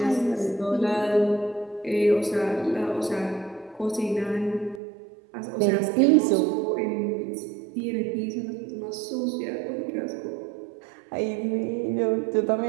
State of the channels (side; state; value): left; drops out; at 4.8 s